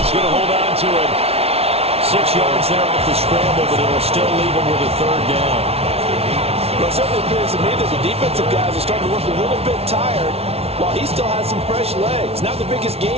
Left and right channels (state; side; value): late; left; 0.30 ms